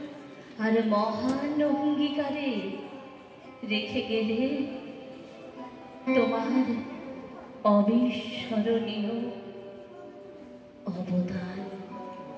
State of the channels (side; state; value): both; identical; correlation 1.00